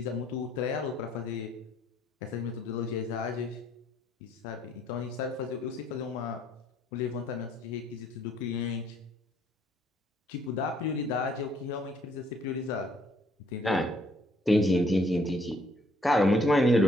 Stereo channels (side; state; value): both; normal; correlation 0.65